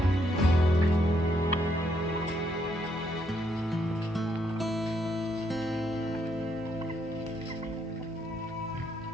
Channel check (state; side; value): normal; both; correlation 0.74